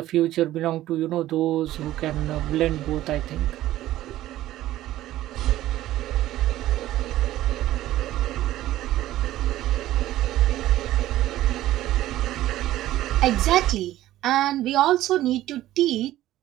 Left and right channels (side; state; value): left; quieter; 14.6 dB